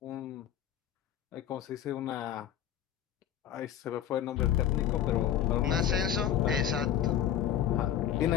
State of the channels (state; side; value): quieter; right; 10.4 dB